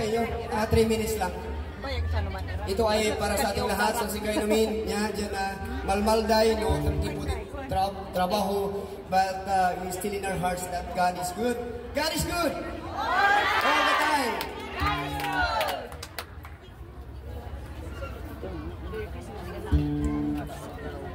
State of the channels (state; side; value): identical; both; correlation 1.00